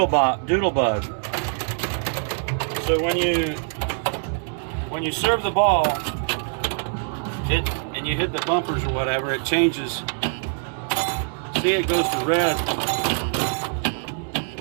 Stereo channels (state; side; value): silent; left; 59 dB below the other